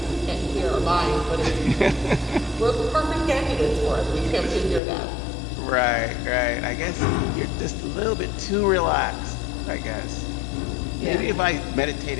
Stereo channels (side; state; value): right; drops out; at 4.8 s